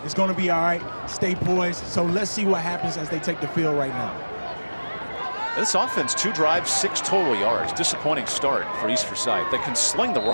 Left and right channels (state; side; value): inverted; both; correlation -1.00